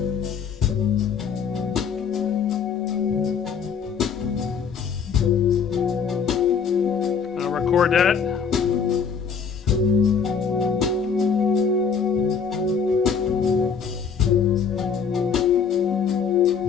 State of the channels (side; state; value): right; quieter; 6.4 dB